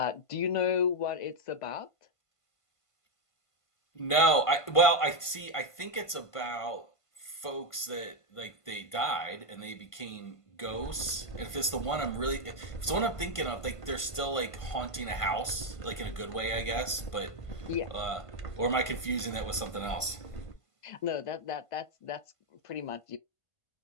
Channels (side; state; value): right; late; 1.5 ms